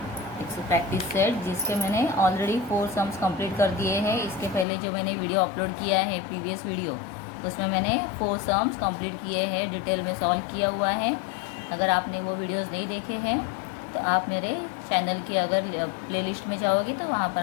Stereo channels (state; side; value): drops out; right; at 4.7 s